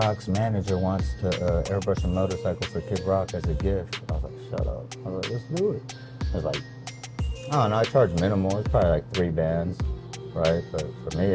manager wants to airbrush a motorcycle for Kid Rock as a gift. I was like, shut up. I was like, let's do it. It was like, I don't know, I charge minimal. It's probably like 3 bands, right? But for me,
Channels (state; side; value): identical; both; correlation 1.00